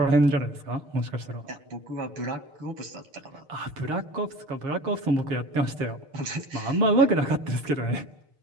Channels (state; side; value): late; left; 6.7 ms